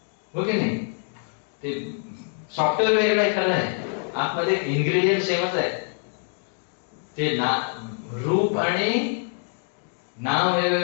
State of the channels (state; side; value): silent; right; 59 dB below the other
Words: हो की नाही? ते सॉफ्टवेअर वेगळं आहे, खरं आहे, आतमध्ये इन्ग्रेडियंट सेमच आहे. ते रूप आणि नाव